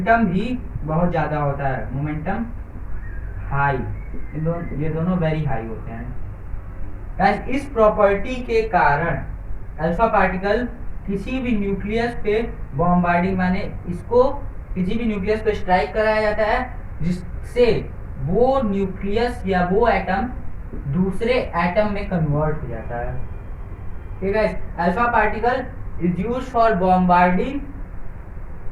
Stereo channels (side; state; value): both; identical; correlation 1.00